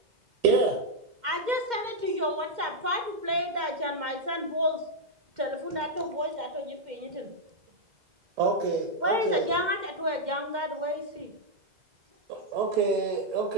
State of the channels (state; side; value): late; left; 2.1 ms